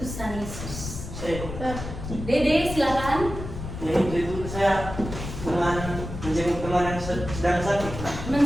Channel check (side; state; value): left; noise; rumble, 8 dB below the sound